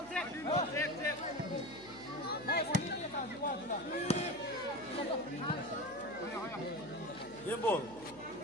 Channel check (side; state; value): right; noise; hum, 22 dB below the sound